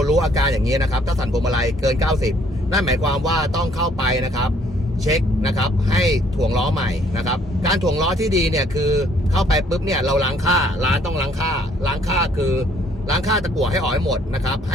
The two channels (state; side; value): normal; both; correlation 0.63